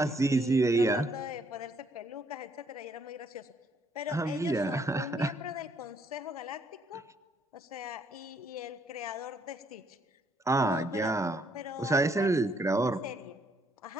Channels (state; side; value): normal; both; correlation 0.69